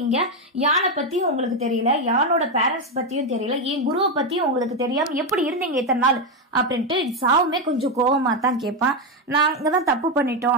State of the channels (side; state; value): both; normal; correlation 0.07